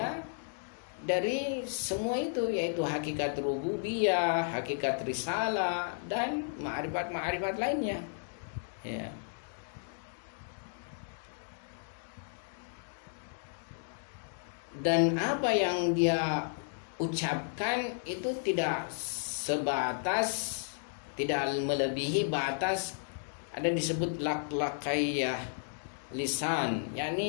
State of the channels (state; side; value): silent; right; digital silence